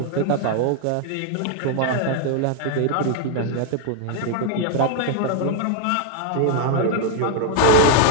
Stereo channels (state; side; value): different; both; correlation 0.00